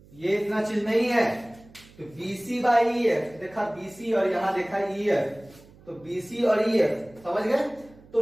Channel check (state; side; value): noise; right; hum, 25 dB below the sound